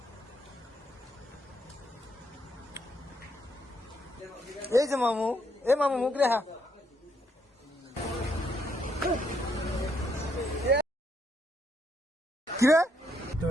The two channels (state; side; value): normal; both; correlation 0.74